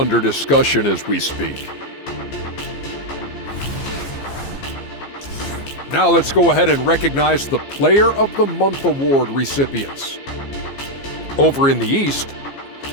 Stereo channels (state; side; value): late; right; 15 ms